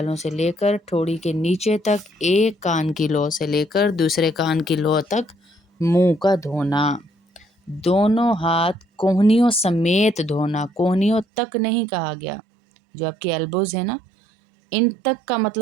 سے لے کر ٹھوڑی کے نیچے تک، ایک کان کی لو سے لے کر دوسرے کان کی لو تک منہ کا دھونا۔ دونوں ہاتھ کوہنیوں سمیت دھونا، کوہنیوں تک نہیں کہا گیا، جو آپ کی ایلبوز ہیں نا، ان تک کا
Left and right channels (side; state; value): left; drops out; at 11.2 s